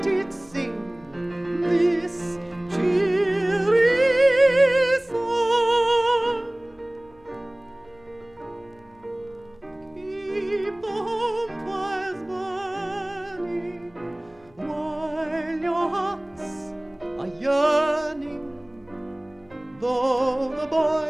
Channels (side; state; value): left; noise; hum, 30 dB below the sound